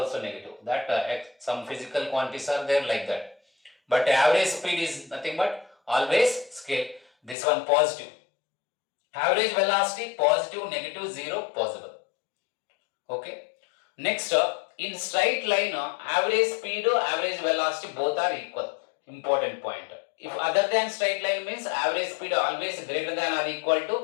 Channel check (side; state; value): right; drops out; at 7.4 s